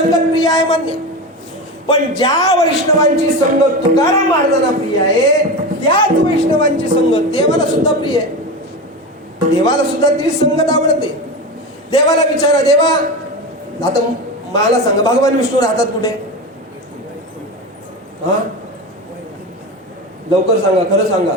प्रिय आहे मान्य, पण ज्या वैष्णवांची संगत तुकाराम महाराजांना प्रिय आहे त्याच वैष्णवांची संगत देवाला सुद्धा प्रिय आहे. देवाला सुद्धा ती संगत आवडते. देवाला विचारा, देवा आता मला सांगा भगवान विष्णू राहतात कुठे? हा लवकर सांगा, खरं सांगा,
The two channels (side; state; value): both; normal; correlation 0.23